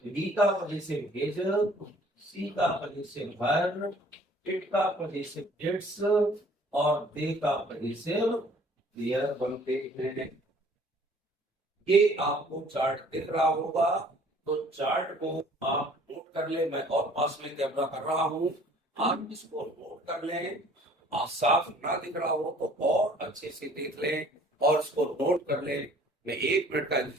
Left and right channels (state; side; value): normal; both; correlation 0.55